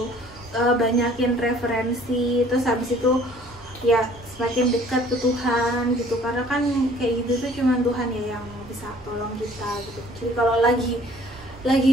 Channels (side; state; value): both; normal; correlation 0.55